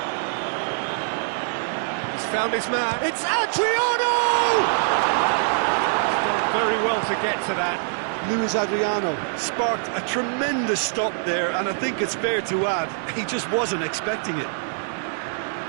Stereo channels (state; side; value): silent; left; 63 dB below the other